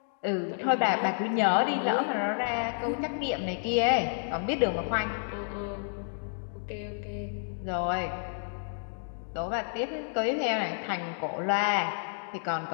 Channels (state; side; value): silent; right; digital silence